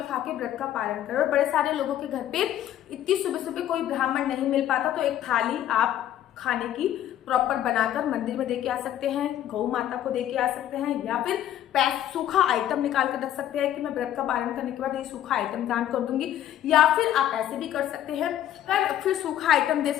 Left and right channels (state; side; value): quieter; right; 11.7 dB